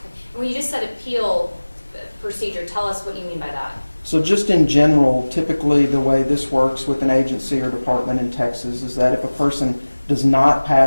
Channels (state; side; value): inverted; both; correlation -1.00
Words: When you just said appeal procedure, tell us what you mean by that. So just in general, typically the way this works with an agency or department in Texas is that if a person does not